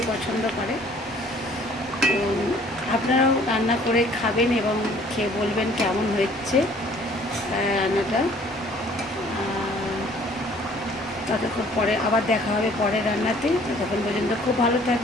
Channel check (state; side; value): normal; both; correlation 0.56